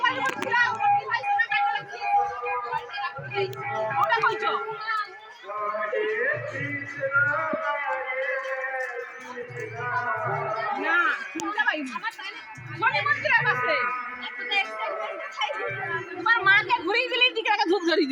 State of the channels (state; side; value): identical; both; correlation 1.00